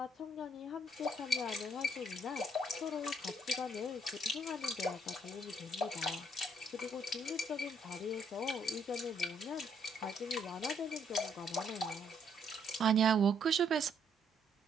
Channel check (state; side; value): normal; both; correlation 0.68